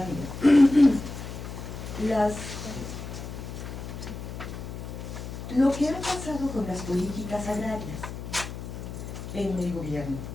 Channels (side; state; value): left; noise; hum, 9 dB below the sound